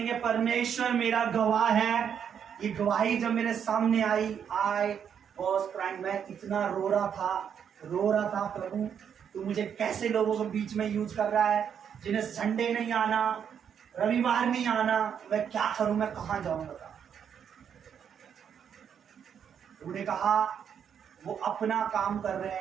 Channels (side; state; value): left; quieter; 8.0 dB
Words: परमेश्वर मेरा गवाह है। ये गवाही जब मेरे सामने आई और मैं इतना रो रहा था, प्रभु तू मुझे कैसे लोगों के बीच में यूज कर रहा है, जिन्हें संडे नहीं आना, रविवार नहीं आना, मैं क्या करूं, मैं कहां जाऊंगा? उन्होंने कहा वो अपना काम कर रहे